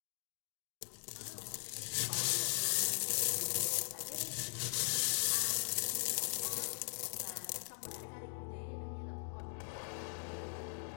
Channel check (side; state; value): right; silent; digital silence